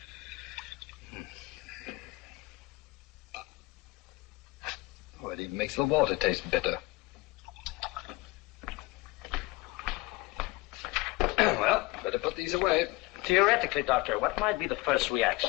Oh, it even makes the water taste bitter. Well, better put these away. Theoretically, Doctor, what might be the first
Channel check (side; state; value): right; quieter; 21.9 dB